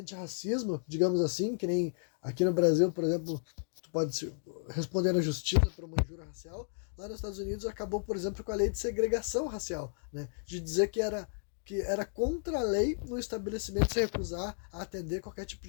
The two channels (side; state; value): right; silent; digital silence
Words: digamos assim, que nem aqui no Brasil, por exemplo, tu pode responder na justiça por uma injúria racial, lá nos Estados Unidos acabou, por exemplo, com a lei de segregação racial, né? De dizer que era contra a lei no estabelecimento se recusar a atender qualquer tipo